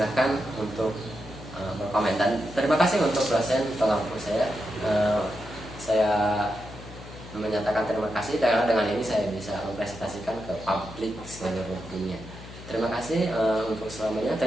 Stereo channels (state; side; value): noise; left; hum, 15 dB below the sound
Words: untuk berkomentar. Terima kasih untuk dosen pengampu saya. Saya menyatakan terima kasih karena dengan ini saya bisa mempresentasikan ke publik seluruh dunia. Terima kasih untuk selamanya.